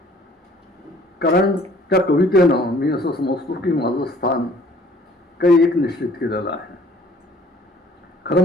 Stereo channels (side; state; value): both; normal; correlation 0.56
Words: कारण त्या कवितेनं मी असं समजतो की माझं स्थान काही एक निश्चित केलेलं आहे. खरं